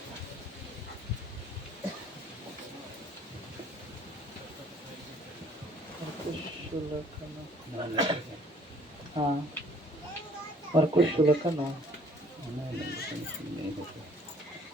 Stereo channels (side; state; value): both; normal; correlation 0.58